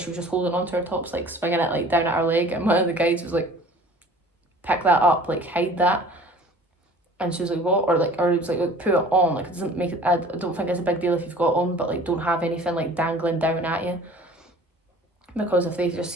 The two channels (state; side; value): normal; both; correlation 0.47